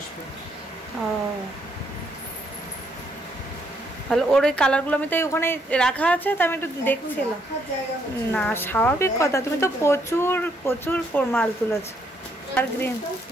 ও ভালো। ওর ওই কালারগুলো আমি তো ওখানে রাখা আছে, তো আমি একটু দেখছিলাম। না স্বাভাবিক কথা, তুমি তো প্রচুর প্রচুর মাল তুলেছো। আর গ্রিন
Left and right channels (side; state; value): both; normal; correlation 0.72